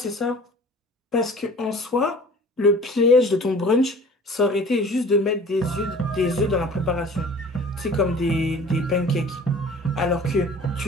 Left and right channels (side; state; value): both; normal; correlation 0.46